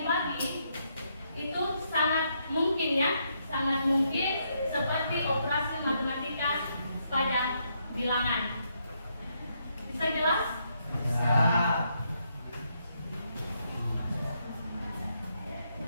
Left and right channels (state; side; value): inverted; both; correlation -0.77